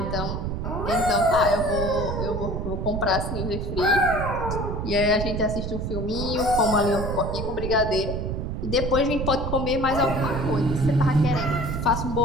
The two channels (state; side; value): noise; right; rumble, 3 dB below the sound